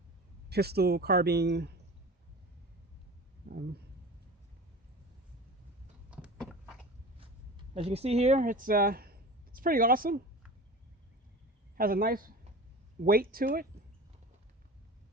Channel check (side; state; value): both; normal; correlation 0.35